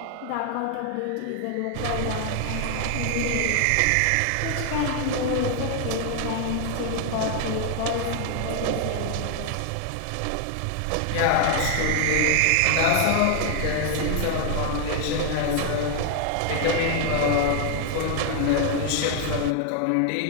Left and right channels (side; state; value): both; different; correlation 0.00